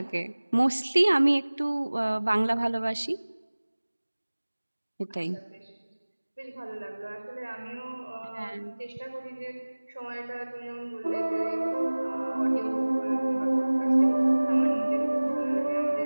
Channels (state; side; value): inverted; both; correlation -1.00